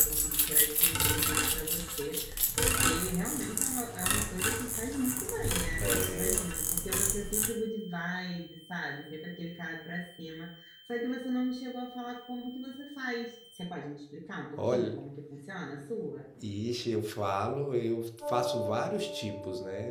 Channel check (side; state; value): both; identical; correlation 1.00